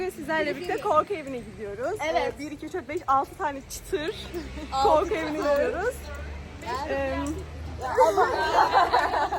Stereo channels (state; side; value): identical; both; correlation 1.00